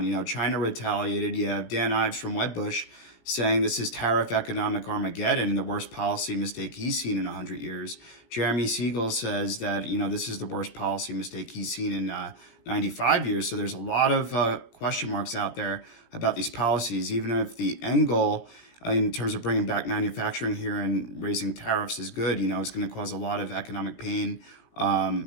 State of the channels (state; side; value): late; right; 17 ms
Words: You know, China retaliated. You have Dan Ives from Wedbush saying this is tariff economic Armageddon and the worst policy mistake he's seen in 100 years. Jeremy Siegel says that, this is the worst policy mistake he's seen in 95 years. So there's a lot of question marks out there about these policies, even if the end goal in terms of bringing back manufacturing here and raising tariffs is good. It's going to cause a lot of economic pain